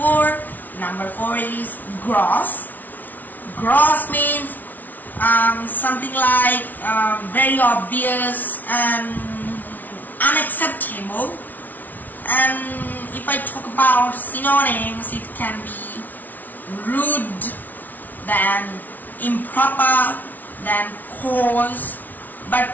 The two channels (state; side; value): late; right; 0.081 ms